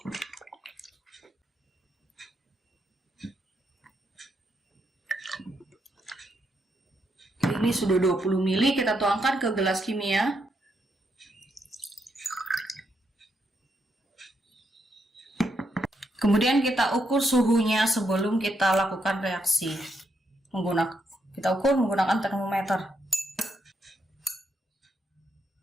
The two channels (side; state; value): both; normal; correlation 0.79